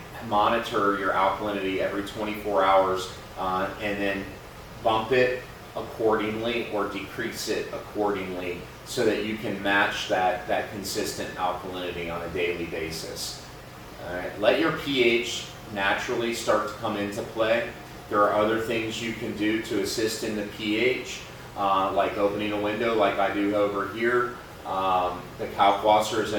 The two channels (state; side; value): identical; both; correlation 1.00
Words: monitor your alkalinity every 24 hours and then bump it accordingly or decrease it accordingly so that you can match that consistent alkalinity on a daily basis. All right. Let your pH naturally start to come into play. There are other things you can do to assist in the pH, like opening a window like I do over here. The Kalkwasser is